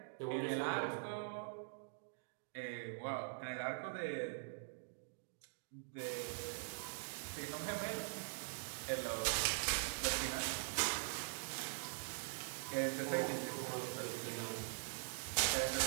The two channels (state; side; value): silent; left; digital silence